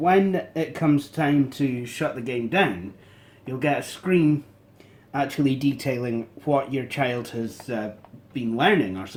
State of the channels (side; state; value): both; identical; correlation 1.00